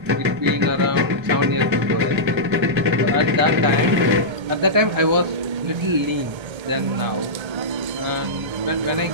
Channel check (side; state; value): left; late; 1.3 ms